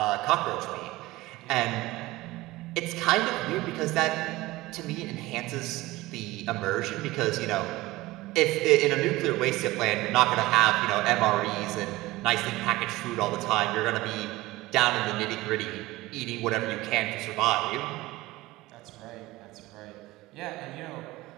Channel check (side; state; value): left; quieter; 19.1 dB